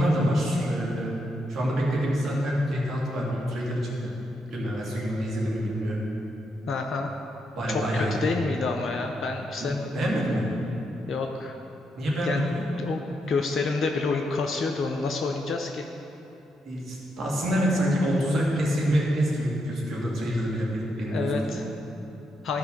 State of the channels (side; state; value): both; normal; correlation 0.81